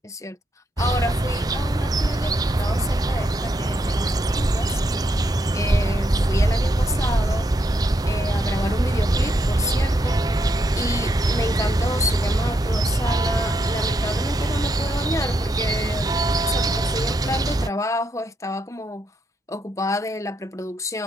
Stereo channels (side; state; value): both; normal; correlation 0.79